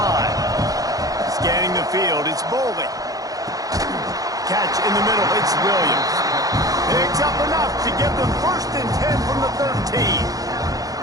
Scanning the field, it's Boley. Catch in the middle, it's Williams. Picks up enough to give them 1st and 10 from the 13.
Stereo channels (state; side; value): late; left; 0.17 ms